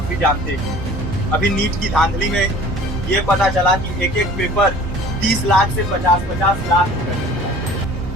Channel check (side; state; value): both; normal; correlation 0.47